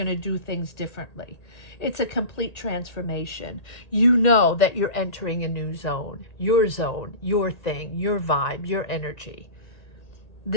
to do things differently. It's a complete transformation. You know that you're entering a new zone, your thing, your vibe, your energy.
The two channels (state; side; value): late; right; 1.8 ms